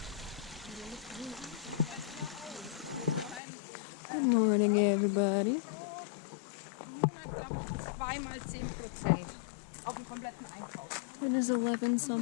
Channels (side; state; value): right; drops out; at 3.4 s